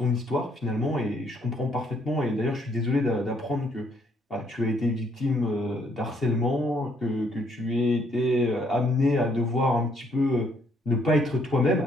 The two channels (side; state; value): both; normal; correlation 0.68